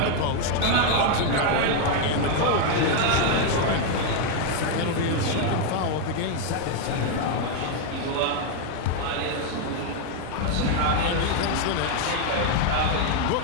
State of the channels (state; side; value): different; both; correlation 0.01